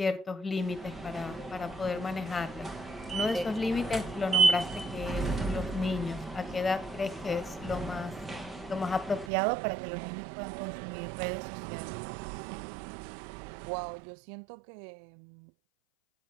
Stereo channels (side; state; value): left; drops out; at 9.3 s